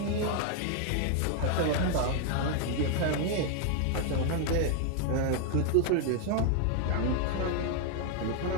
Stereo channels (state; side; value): different; both; correlation 0.00